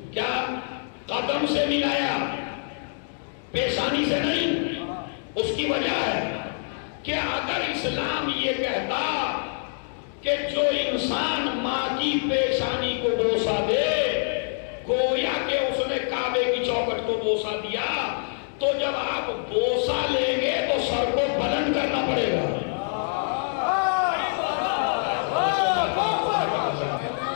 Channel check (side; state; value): right; silent; digital silence